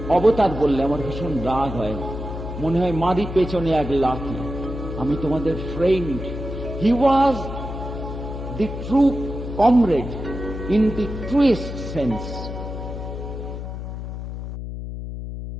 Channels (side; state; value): left; noise; hum, 7 dB below the sound